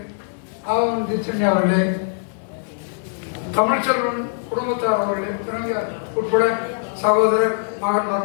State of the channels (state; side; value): silent; right; digital silence